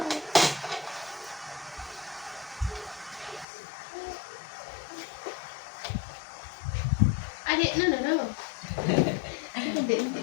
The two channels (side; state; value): right; drops out; at 3.5 s